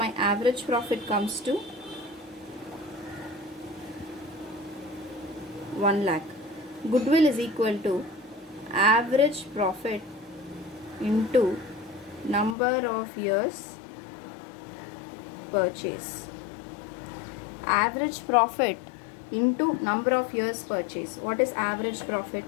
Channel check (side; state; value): right; drops out; at 12.6 s